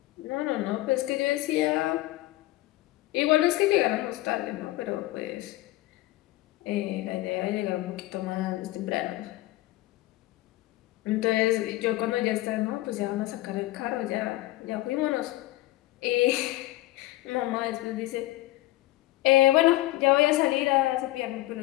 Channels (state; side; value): quieter; right; 17.5 dB